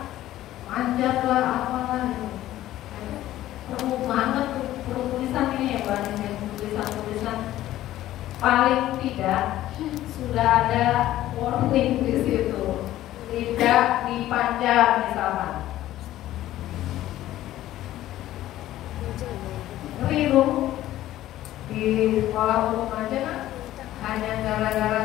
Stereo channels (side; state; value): right; quieter; 14.1 dB